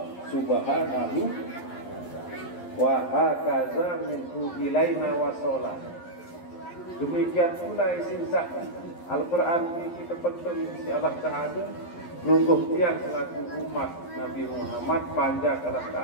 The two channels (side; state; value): right; late; 11 ms